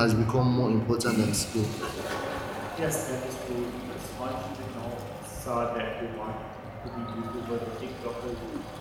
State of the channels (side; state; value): both; identical; correlation 1.00